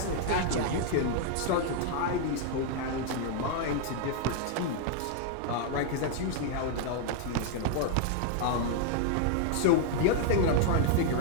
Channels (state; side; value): different; both; correlation 0.00